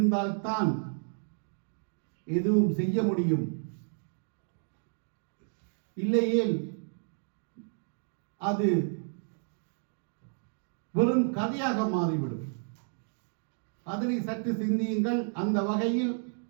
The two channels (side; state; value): left; silent; 57 dB below the other